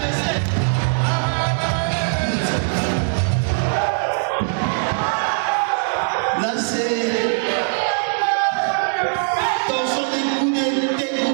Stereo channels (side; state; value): left; silent; 56 dB below the other